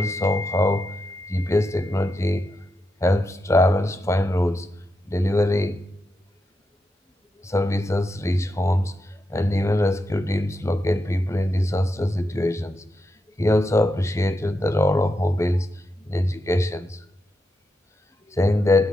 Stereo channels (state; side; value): normal; both; correlation 0.85